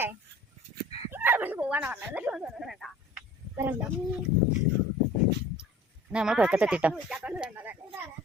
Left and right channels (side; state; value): both; normal; correlation 0.46